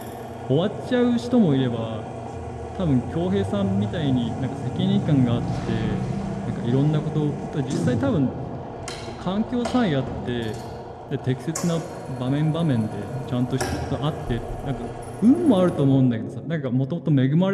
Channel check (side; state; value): both; identical; correlation 1.00